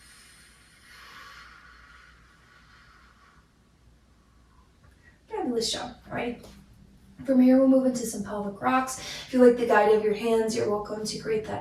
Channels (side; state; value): both; identical; correlation 1.00